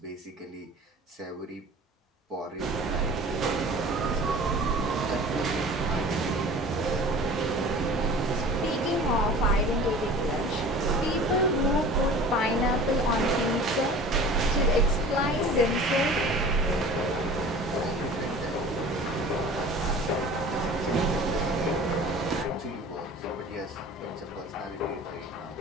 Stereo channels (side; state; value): both; normal; correlation 0.42